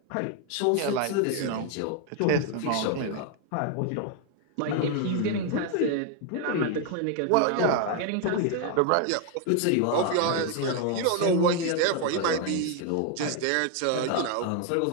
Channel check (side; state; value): both; different; correlation 0.01